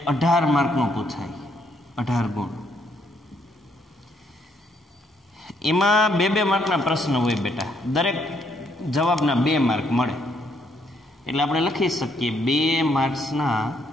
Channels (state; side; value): normal; both; correlation 0.71